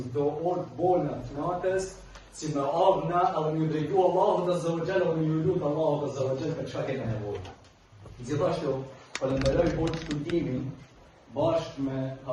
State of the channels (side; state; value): both; identical; correlation 1.00